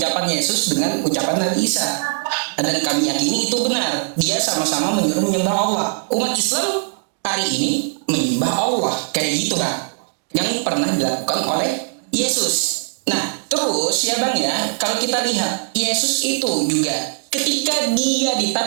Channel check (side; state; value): left; silent; digital silence